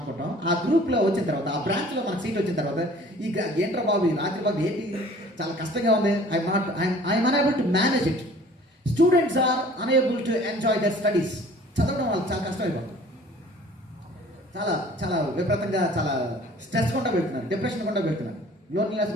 ఆ గ్రూప్లో వచ్చిన తర్వాత, ఆ బ్రాంచ్లో మనకు సీట్ వచ్చిన తర్వాత ఈ ఏంట్రా బాబు, ఈ రాత్రి బాబు ఏంటి చాలా కష్టంగా ఉంది, I'm unable to manage it. Students are unable to enjoy their studies. చదవడం వాళ్ళకి చాలా కష్టం అయిపోతుంది. చాలా చాలా విపరీతంగా చాలా స్ట్రెస్ గుండా వెళ్తున్నారు, డిప్రెషన్ గుండా వెళ్తున్నారు, లోన్లీనెస్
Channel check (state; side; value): normal; both; correlation 0.50